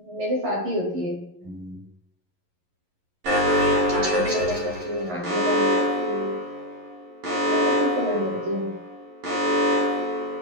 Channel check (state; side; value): late; left; 11 ms